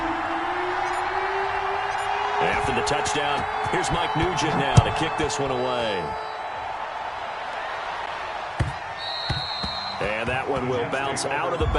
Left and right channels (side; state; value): both; identical; correlation 1.00